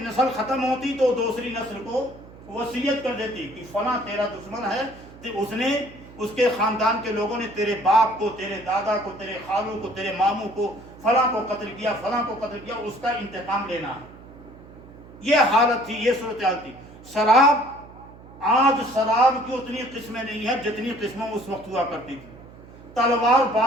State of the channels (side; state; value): right; noise; hum, 20 dB below the sound